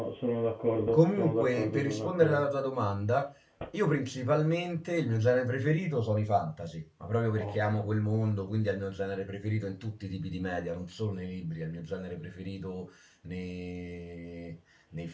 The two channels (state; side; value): identical; both; correlation 1.00